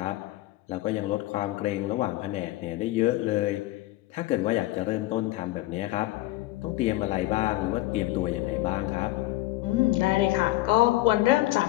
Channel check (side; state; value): right; quieter; 17.7 dB